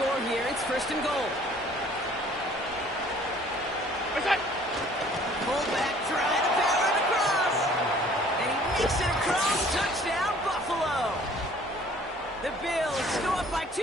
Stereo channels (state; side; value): normal; both; correlation 0.55